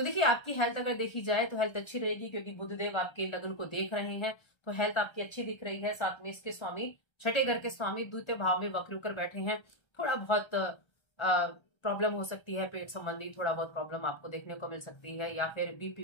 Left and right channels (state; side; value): late; right; 1.3 ms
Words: देखिए आपकी हेल्थ अगर देखी जाए तो हेल्थ अच्छी रहेगी, क्योंकि बुधदेव आपके लग्न को देख रहे हैं, तो हेल्थ आपकी अच्छी दिख रही है। साथ में इसके स्वामी छठे घर के स्वामी द्वितीय भाव में वक्र होकर बैठे हैं। थोड़ा बहुत प्रॉब्लम हो सकती है, पेट संबंधी थोड़ा बहुत प्रॉब्लम आपको देखने को मिल सकती है, या फिर बीपी